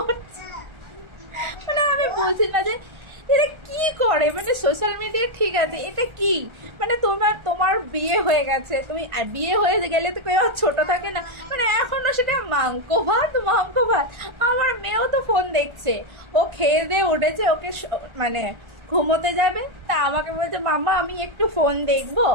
মানে আমি বুঝি না যে এটা কি করে, মানে সোশ্যাল মিডিয়া ঠিক আছে, এটা কি মানে তোমার বিয়ে হয়ে গেছে, তুমি বিয়ে হয়ে গেলে তো কেউ ছোট থাকে না, মানে এখনো সেটা মাংস ভাত। আমার মেয়েও তো ফোন দেখছে, ও খেয়ে দিয়ে উঠেছে, ওকে মানে ঘুমোতে যাবে, তা আমাকে বলছে মাম্মা আমি একটু ফোন দেখবো।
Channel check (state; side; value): late; left; 1.4 ms